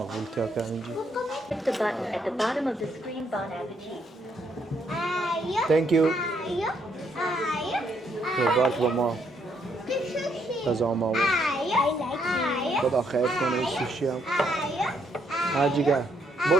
که اینجا Click the button at the bottom of the screen. Bon appetit. Thank you Ayo. بارک با ما غذا ما بود خدا خیر کنه سوشی هم هرجیگه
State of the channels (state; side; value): normal; both; correlation 0.73